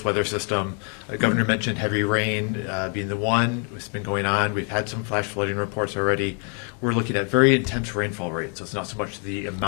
weather system. The governor mentioned heavy rain being the one. It's been going on. We've had some flash flooding reports already. We're looking at very intense rainfall rates. So it's not so much the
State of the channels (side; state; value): right; quieter; 39.8 dB